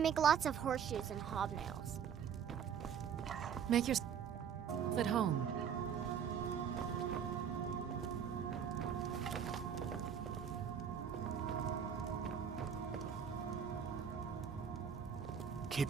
make lots of horseshoes and hobnails. Make yourself at home.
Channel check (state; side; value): quieter; left; 7.8 dB